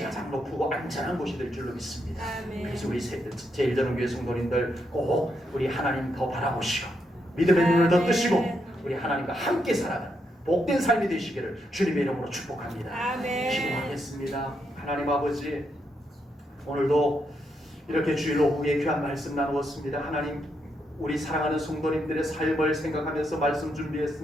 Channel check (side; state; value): both; normal; correlation 0.80